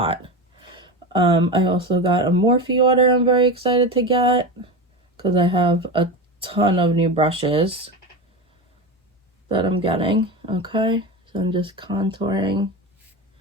I also got a Morphe order I'm very excited to get because I have a ton of new brushes that I'm getting. Okay, so I'm just contouring.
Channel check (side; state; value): both; normal; correlation 0.22